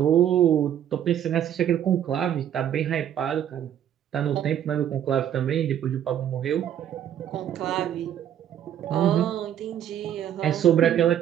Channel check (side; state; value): left; quieter; 10.3 dB